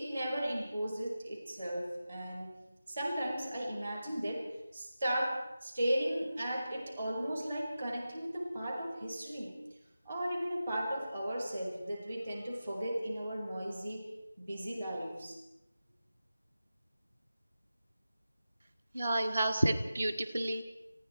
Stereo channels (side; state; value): both; inverted; correlation -0.93